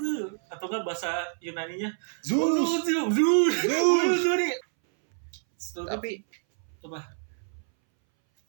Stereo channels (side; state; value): left; silent; 60 dB below the other